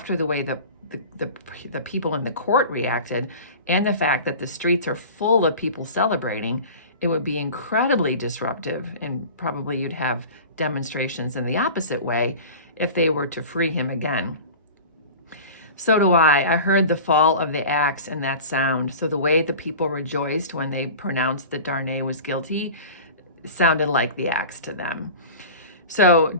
the way the people in the court reacted and the fact that the streets are full of people celebrating, it would be incredibly disruptive, and probably you'd have demonstrations in the opposite way if they were to free him again. So do I. I heard the fall of the axe and that sound. So the way the people rejoiced when they pronounced that Darnay was guilty sounded like the axe to them. So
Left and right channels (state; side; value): inverted; both; correlation -0.37